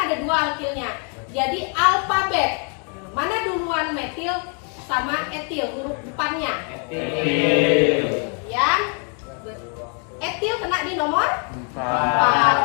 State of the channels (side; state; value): right; quieter; 39.7 dB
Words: ada 2 alkilnya. Jadi alfabet. Mana duluan metil sama etil huruf depannya? Etil. Yang etil kena di nomor